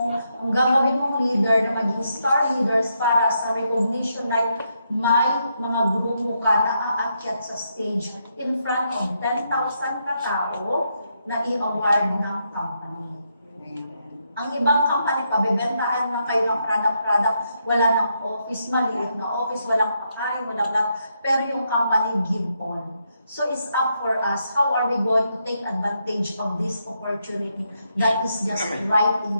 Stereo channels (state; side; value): inverted; both; correlation -0.80